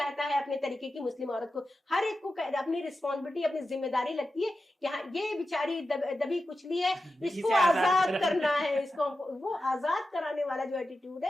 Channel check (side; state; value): both; normal; correlation 0.91